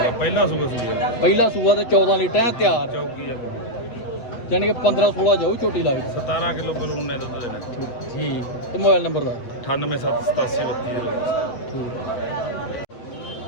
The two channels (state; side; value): late; right; 8.3 ms